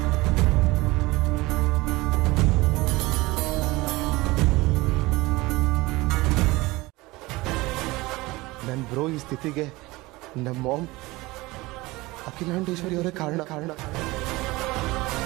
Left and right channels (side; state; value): left; quieter; 21.2 dB